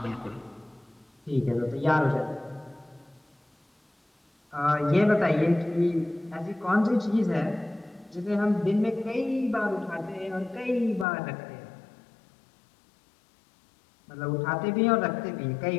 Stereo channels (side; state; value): right; drops out; at 11.1 s